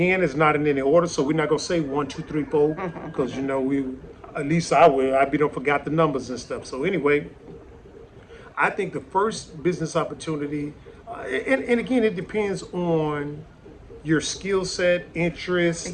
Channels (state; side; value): identical; both; correlation 1.00